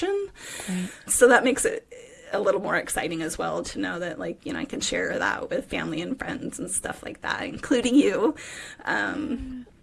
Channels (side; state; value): both; identical; correlation 1.00